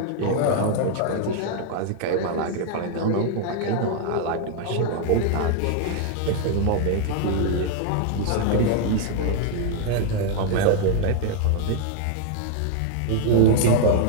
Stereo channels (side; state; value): both; different; correlation 0.00